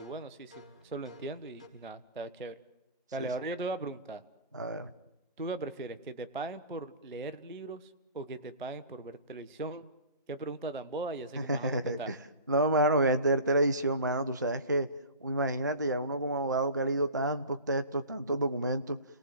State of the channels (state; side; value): inverted; both; correlation -0.40